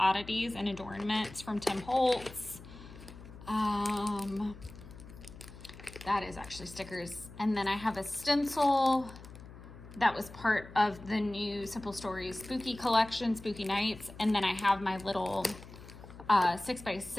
and adornments from Tim Holtz. That is actually stickers. And then I have a stencil that was part of the new Simple Stories Spooky collection, Spooky Nights. And then I have my little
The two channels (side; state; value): left; noise; hum, 16 dB below the sound